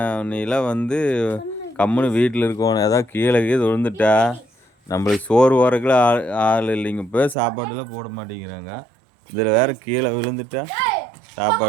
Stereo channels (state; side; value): drops out; left; at 7.4 s